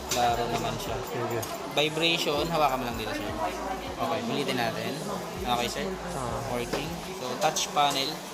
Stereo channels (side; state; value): both; identical; correlation 1.00